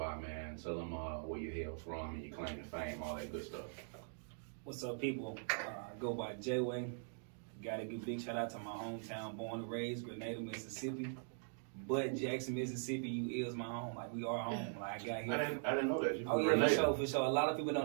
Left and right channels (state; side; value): silent; left; digital silence